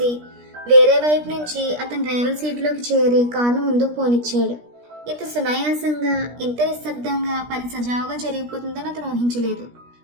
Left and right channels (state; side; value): late; left; 17 ms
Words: వేరే వైపు నుంచి అతను డ్రైవర్ సీట్లోకి చేరి కారును ముందుకు పోనిచ్చాడు. ఇంత సునాయాసంగా, ఇంత నిశ్శబ్దంగా పని సజావుగా జరిగిపోతుందని అతను ఊహించలేదు.